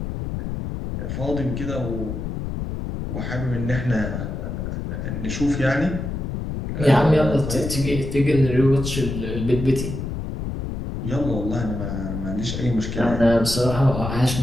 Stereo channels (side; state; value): left; noise; rumble, 5 dB below the sound